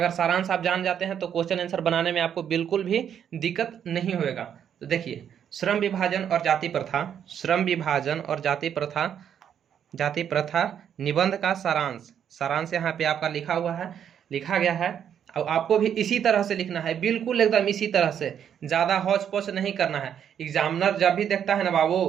सारांश आप जान जाते हैं तो क्वेश्चन आंसर बनाने में आपको बिल्कुल भी दिक्कत नहीं होगा। तो देखिए, श्रम विभाजन और जाति प्रथा, श्रम विभाजन और जाति प्रथा, जाति प्रथा निबंध का सारांश, सारांश यहाँ पे आपका लिखा हुआ है, लिखा गया है। और आपको भी इसी तरह से लिखना है, बिल्कुल एकदम इसी तरह से, ज़्यादा हौच पौच नहीं करना है। एग्जामिनर जब भी देखता है ना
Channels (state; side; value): quieter; left; 8.9 dB